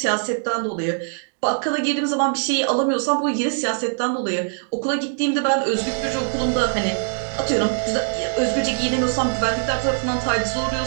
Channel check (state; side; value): silent; left; digital silence